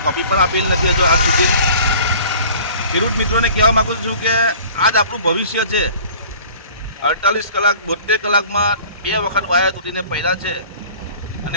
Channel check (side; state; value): both; inverted; correlation -0.47